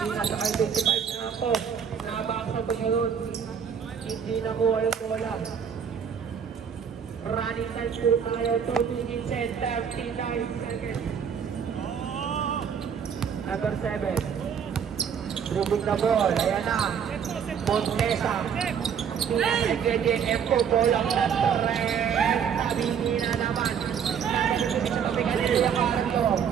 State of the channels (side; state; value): left; quieter; 7.5 dB